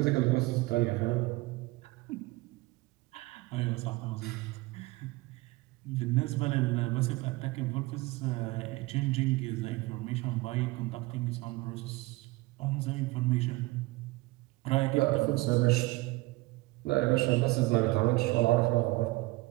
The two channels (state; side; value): quieter; left; 21.6 dB